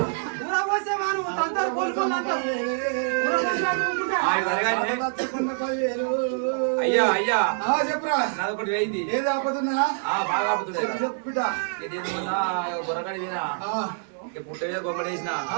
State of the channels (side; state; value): left; silent; digital silence